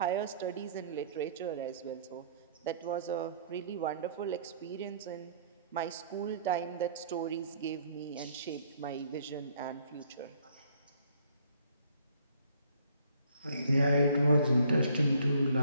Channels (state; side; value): inverted; both; correlation -0.61